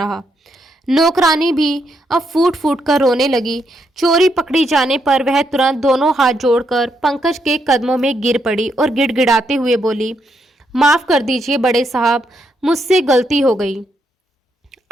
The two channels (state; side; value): normal; both; correlation 0.78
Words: नौकरानी भी अब फूट फूट कर रोने लगी। चोरी पकड़ी जाने पर वह तुरंत दोनों हाथ जोड़कर पंकज के कदमों में गिर पड़ी और गिड़गिड़ाते हुए बोली, माफ कर दीजिए बड़े साहब, मुझसे गलती हो गई।